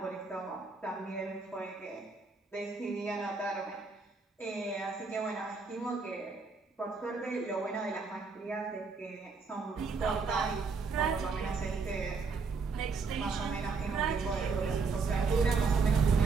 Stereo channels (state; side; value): quieter; left; 4.6 dB